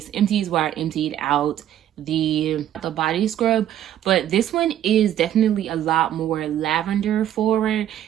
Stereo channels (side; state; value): left; quieter; 11.4 dB